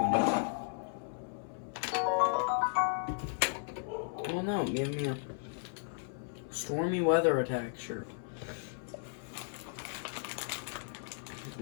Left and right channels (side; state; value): right; silent; 54 dB below the other